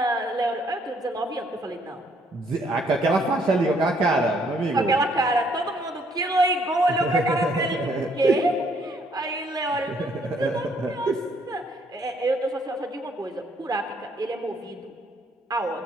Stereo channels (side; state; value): both; normal; correlation 0.67